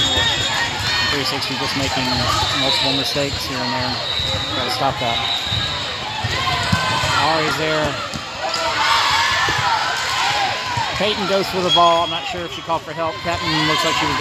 360 just making multiple mistakes here and there. Gotta stop that. Ari's there. Peyton goes for the ball. I'm not sure if she called for help. Captain looks like she was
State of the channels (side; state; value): both; identical; correlation 1.00